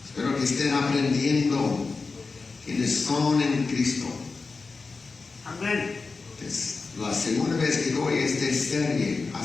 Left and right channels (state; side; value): quieter; right; 4.2 dB